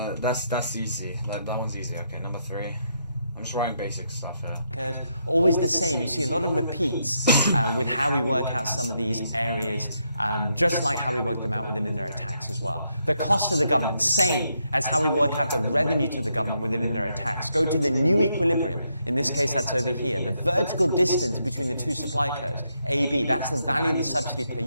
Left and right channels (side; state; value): both; inverted; correlation -0.79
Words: easy. That one's easy. Okay, number 3. I'm just writing basic stuff here. Always the same. You see a lot of repeats with how we work out some of these areas, just like how we work them out within indirect tax as well. The cost to the government, same as how we work out the revenue to the government within indirect tax. Go to the new equilibrium. In this case, that's over here. The vertical distance between the two supply curves, AB, that's the value of the subsidy per